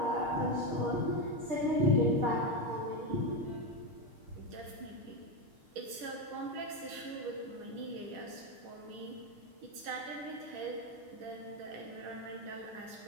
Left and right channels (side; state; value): left; late; 6.5 ms